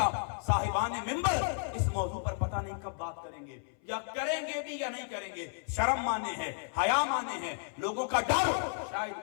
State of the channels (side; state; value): right; silent; 56 dB below the other